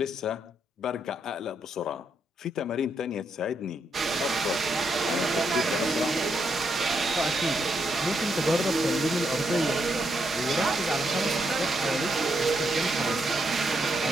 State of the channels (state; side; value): normal; both; correlation 0.79